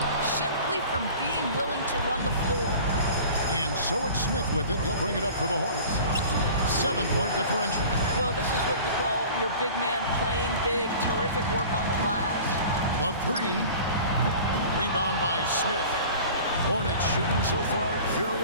simply from being willing to run the floor. And so it's Smith with it. He'll bring it up for the Hornets. 7-point differential. Well, this is what you call your big man playing big. Terrific work on the glass. The 3. Rebound by Smith. Hornets shooting so far very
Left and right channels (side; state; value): both; inverted; correlation -0.42